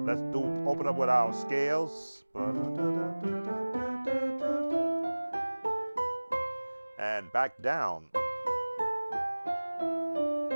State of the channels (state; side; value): inverted; both; correlation -1.00